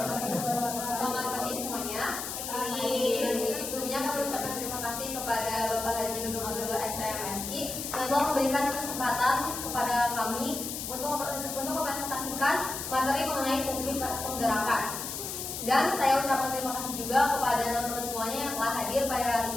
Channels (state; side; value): noise; left; hiss, 6 dB below the sound